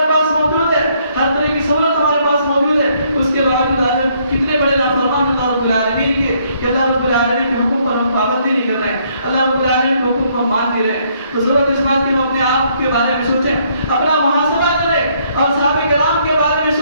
پاس موجود ہے, ہر طرح کی سہولت ہمارے پاس موجود ہے, اس کے باوجود آج کتنے بڑے نافرمان اللہ رب العالمین کے کہ اللہ رب العالمین کے حکم پر ہم پابندی نہیں کر رہے ہیں, اللہ رب العالمین کے حکم کو مان نہیں رہے ہیں. تو ضرورت اس بات کی ہم اپنے آپ کے بارے میں سوچیں, اپنا محاسبہ کریں اور صحابہ کرام کے بارے میں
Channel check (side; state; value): both; inverted; correlation -0.68